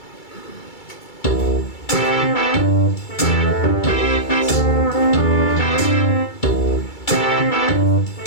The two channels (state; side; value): late; right; 2.3 ms